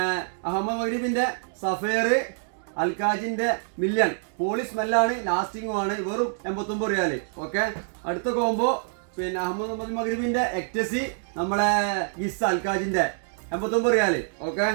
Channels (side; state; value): left; silent; digital silence